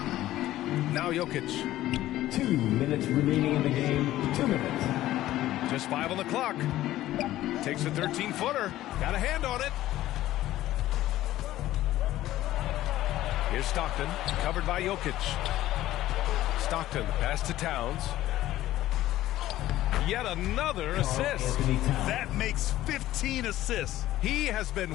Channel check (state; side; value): quieter; right; 14.7 dB